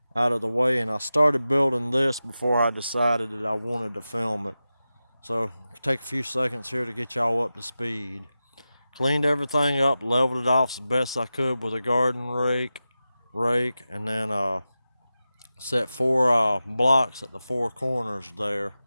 and I started building this before I decided that I wanted to film it. So take a few seconds here to get y'all up to speed. Cleaned everything up, leveled it off as best I could with a garden rake, and then set four blocks at the four corners there.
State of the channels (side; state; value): both; inverted; correlation -0.93